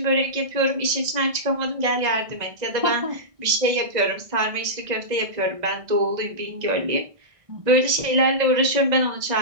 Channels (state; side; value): late; left; 1.6 ms